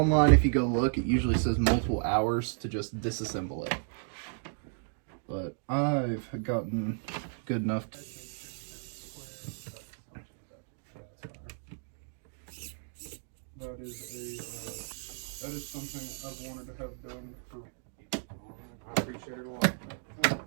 if you go look, it usually says multiple hours to just disassemble it. But I've gotten good enough to... That is something I've wanted to have done for... I appreciate it a lot.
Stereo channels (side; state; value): left; silent; digital silence